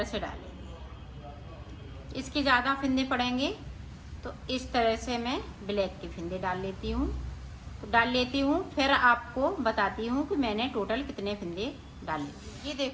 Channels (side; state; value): both; identical; correlation 1.00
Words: से डालेंगे। इसके ज़्यादा फिंदे पड़ेंगे तो इस तरह से मैं ब्लैक के फिंदे डाल लेती हूँ। तो डाल लेती हूँ, फिर आपको बताती हूँ कि मैंने टोटल कितने फिंदे डाले। ये